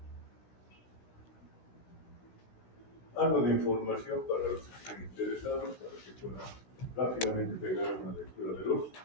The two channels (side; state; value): right; late; 17 ms